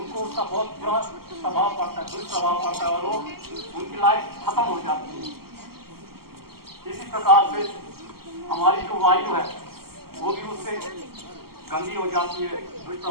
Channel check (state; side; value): late; left; 0.94 ms